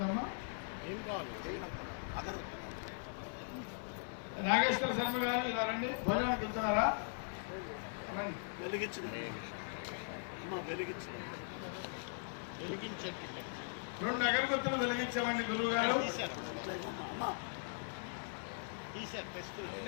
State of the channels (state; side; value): silent; right; 51 dB below the other